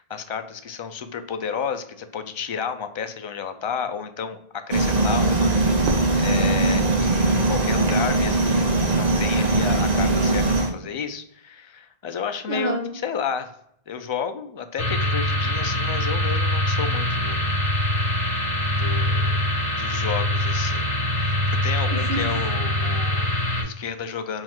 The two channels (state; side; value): late; left; 1.9 ms